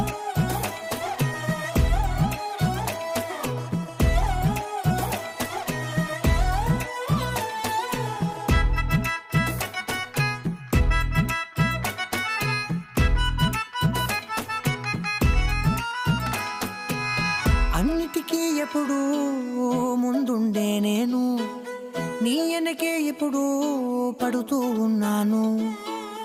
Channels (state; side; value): identical; both; correlation 1.00